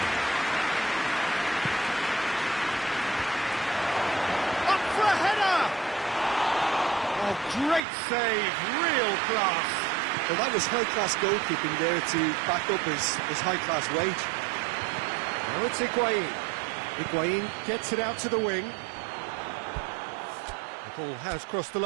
Up for a header! Oh, great save, real class. Well, that was high-class goalkeeping there to back up his high-class wage. Now it's Higuain. Higuain gets it out to the wing. The ball has crossed the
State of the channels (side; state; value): left; drops out; at 7.8 s